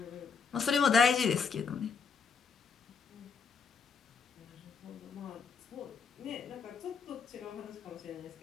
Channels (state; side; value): quieter; right; 5.6 dB